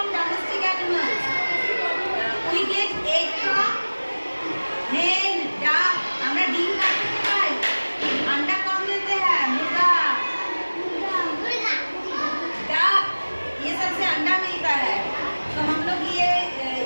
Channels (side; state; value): both; inverted; correlation -1.00